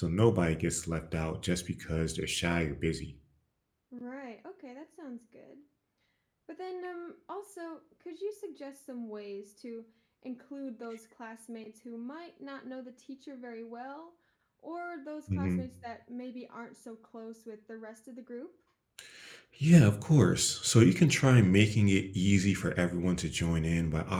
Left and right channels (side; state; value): both; identical; correlation 1.00